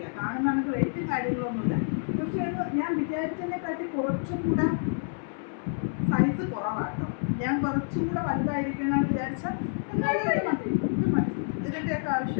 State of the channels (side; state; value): right; silent; 59 dB below the other